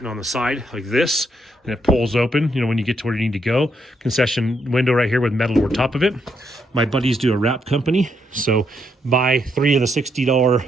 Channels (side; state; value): both; normal; correlation 0.77